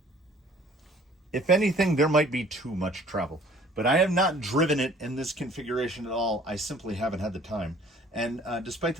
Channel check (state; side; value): normal; both; correlation 0.54